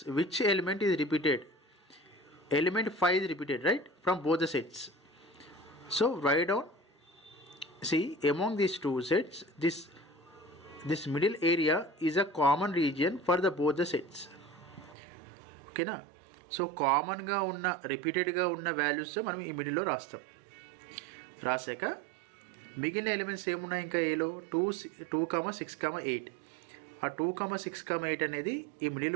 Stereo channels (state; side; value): drops out; left; at 15.0 s